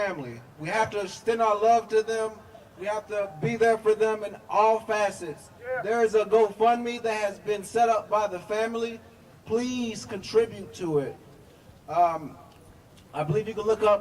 We have to extend our love to them. We have to be there for them in all facets. There is a GoFundMe that has been set up by the family. Please contribute to it. I believe you can look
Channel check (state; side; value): identical; both; correlation 1.00